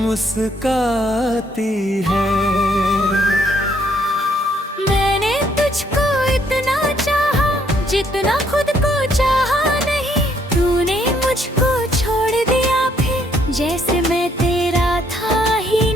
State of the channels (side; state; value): both; normal; correlation 0.69